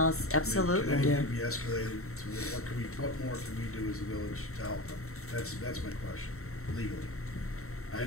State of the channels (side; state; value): right; late; 0.63 ms